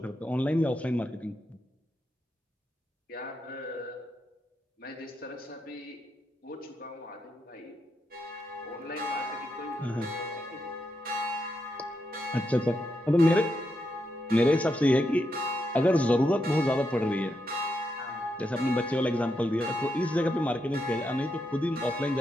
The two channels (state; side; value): normal; both; correlation 0.83